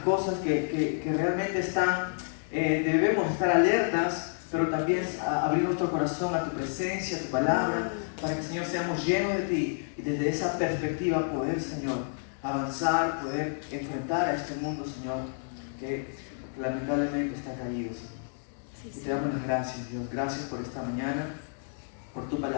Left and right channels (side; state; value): right; silent; digital silence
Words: cosas que realmente están, debemos estar alertas, pero también abrir nuestro corazón a tu presencia, a tu palabra, para que, Señor, seamos llenos de ti y desde esa perspectiva poder, Señor, avanzar, poder enfrentar a este mundo, Señor, que lamentablemente está caído, Señor. Y te damos las gracias, Dios. Gracias por esta mañana, por tu